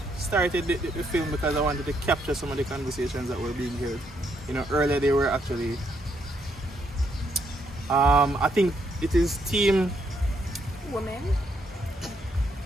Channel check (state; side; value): normal; both; correlation 0.75